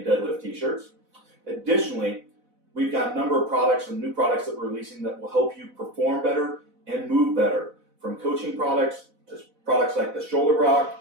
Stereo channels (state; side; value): late; left; 4.0 ms